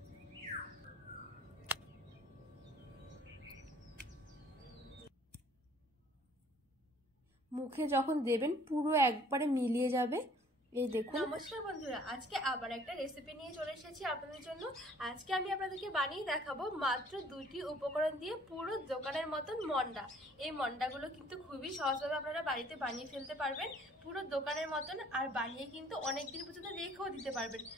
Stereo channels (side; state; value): both; normal; correlation 0.57